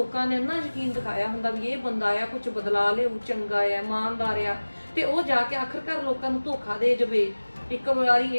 ਨੇ ਇੰਨਾ ਯਕੀਨ ਦਿਖਾਇਆ ਹੁੰਦਾ ਵੀ ਇਹ ਬੰਦਾ ਆ ਕੁਝ ਬਦਲਾ ਲਿਆਊ, ਚੰਗਾ ਆ, ਇਮਾਨਦਾਰ ਆ, ਤੇ ਉਹ ਜਾ ਕੇ ਆਖਰਕਾਰ ਲੋਕਾਂ ਨੂੰ ਧੋਖਾ ਦੇ ਜਾਵੇ। ਇੱਕ ਵਾਰੀ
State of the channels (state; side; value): inverted; both; correlation -1.00